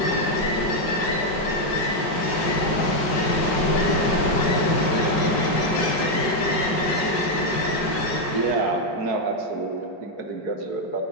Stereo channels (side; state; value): right; late; 5.3 ms